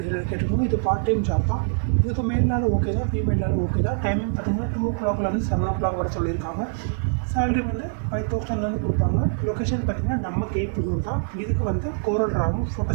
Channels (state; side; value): silent; left; 63 dB below the other